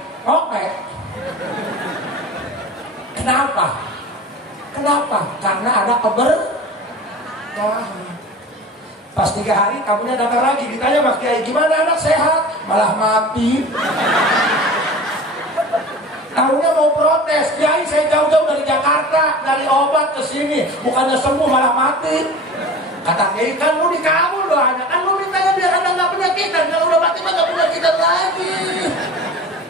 oke. Kenapa? Karena ada keberkahan. Pas 3 hari kamunya datang lagi, ditanya Mas Kiai, gimana anak sehat? Malah mati. Tahunya mau protes, Kiai saya jauh-jauh dari Jakarta, dari obat ke sini, bukannya sembuh malah mati. Kata Kiai, kan lu dikabul doanya, kan lu mintanya biar anda nggak penyakitan, kalau udah mati mah nggak penyakitan lagi.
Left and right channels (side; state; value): both; normal; correlation 0.37